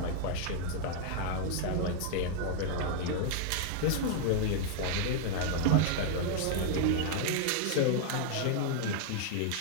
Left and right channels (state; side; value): different; both; correlation 0.00